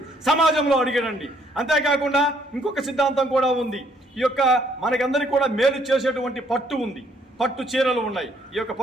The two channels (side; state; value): both; normal; correlation 0.67